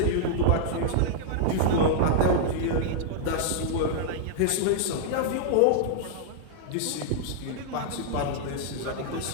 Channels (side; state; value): both; different; correlation -0.01